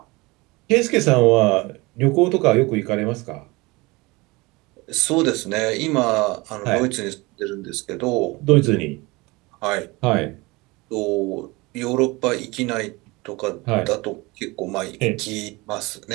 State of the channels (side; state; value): left; quieter; 23.6 dB